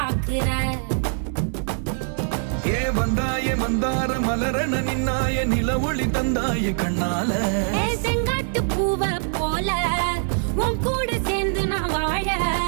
ஏ வந்தாய மந்தார மலரன நின்னாய நில ஒளி தந்தாய கண்ணால. செங்காட்டு பூவ போல உன் கூட சேர்ந்து நான் வாழ.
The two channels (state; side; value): silent; left; digital silence